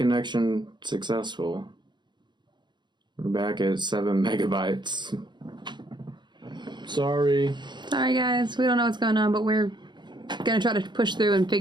successful. We're back at 7 megabytes. Sorry. Sorry, guys. We don't know what's going on, but we're going to try to push through and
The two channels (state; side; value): late; left; 0.22 ms